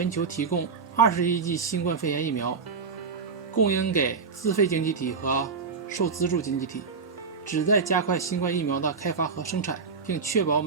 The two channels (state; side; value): quieter; left; 5.2 dB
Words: 球提供20亿剂新冠肺炎疫苗，供应给自费经济体和受资助经济体，旨在加快新冠疫苗的开发和生产，并确保